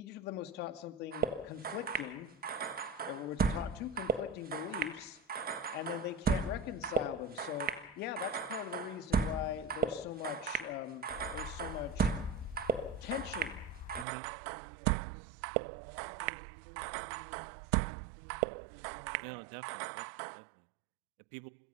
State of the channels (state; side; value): drops out; left; at 14.1 s